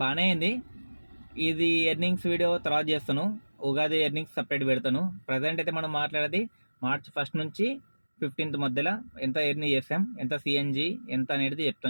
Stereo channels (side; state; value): both; inverted; correlation -1.00